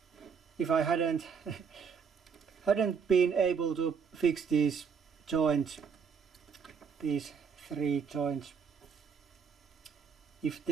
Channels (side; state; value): left; quieter; 6.3 dB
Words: if I hadn't been able to fix these joints, these 3 joints. If